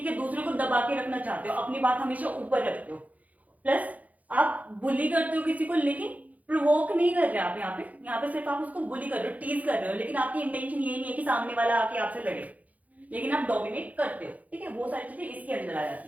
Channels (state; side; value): late; left; 0.075 ms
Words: है, दूसरे को दबा के रखना चाहते हो, अपनी बात हमेशा ऊपर रखते हो, प्लस आप बुली करते हो किसी को, लेकिन प्रोवोक नहीं कर रहे आप यहाँ पे सिर्फ आप उसको बुली कर रहे हो, टीज कर रहे हो, लेकिन आपकी इंटेंशन ये नहीं है कि सामने वाला आके आपसे लड़े, लेकिन आप डोमिनेट करते हो, ठीक है। वो सारी चीजें इसके अंदर आ